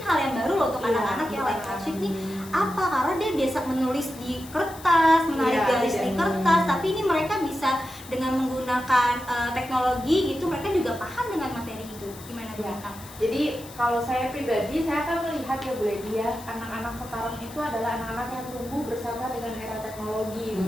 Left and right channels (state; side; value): noise; left; hiss, 18 dB below the sound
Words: hal yang baru loh untuk Iya, anak-anak ya, live betul. worksheet nih. Apa? Karena dia biasa menulis di kertas, menarik Iya, garis di iya. kertas, tapi ini mereka bisa dengan menggunakan teknologi gitu, mereka juga paham dengan materi itu. Gimana Bu Iya. Lintang? Jadi kalau saya pribadi, saya akan melihat ya Bu Lady ya, anak-anak sekarang itu adalah anak-anak yang tumbuh bersama dengan era teknologi